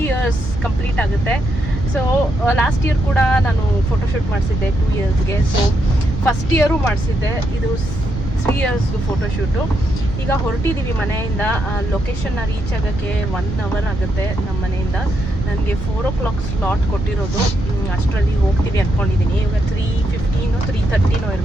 years ಕಂಪ್ಲೀಟ್ ಆಗುತ್ತೆ. ಸೊ ಲಾಸ್ಟ್ ಇಯರ್ ಕೂಡ ನಾನು ಫೋಟೋ ಶೂಟ್ ಮಾಡಿಸಿದ್ದೆ 2 yearsಗೆ. ಸೊ ಫಸ್ಟ್ ಇಯರು ಮಾಡಿಸಿದ್ದೆ. ಇದು 3 years ಫೋಟೋ ಶೂಟು. ಈಗ ಹೊರಟಿದ್ದೀವಿ ಮನೆಯಿಂದ. ಲೊಕೇಶನ್ನ ರೀಚ್ ಆಗೋಕ್ಕೆ 1 hour ಆಗುತ್ತೆ ನಮ್ಮ ಮನೆಯಿಂದ. ನನಗೆ 4 o'clock ಸ್ಲಾಟ್ ಕೊಟ್ಟಿರೋದು. ಅಷ್ಟರಲ್ಲಿ ಹೋಗ್ತೀವಿ ಅಂದ್ಕೊಂಡಿದ್ದೀನಿ. ಇವಾಗ 3:15 3:30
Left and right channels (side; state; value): right; noise; rumble, 7 dB below the sound